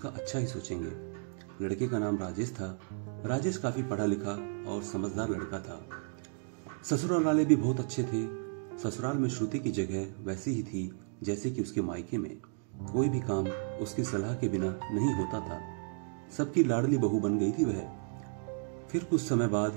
अच्छा ही सोचेंगे। लड़के का नाम राजेश था। राजेश काफी पढ़ा लिखा और समझदार लड़का था। ससुराल वाले भी बहुत अच्छे थे। ससुराल में श्रुति की जगह वैसी ही थी जैसे कि उसके मायके में। कोई भी काम उसकी सलाह के बिना नहीं होता था। सबकी लाडली बहू बन गई थी वह। फिर कुछ समय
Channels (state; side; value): silent; left; 56 dB below the other